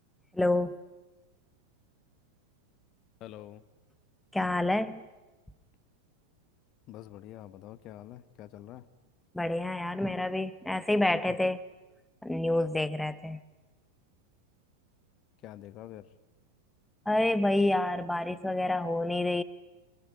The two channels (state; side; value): normal; both; correlation 0.95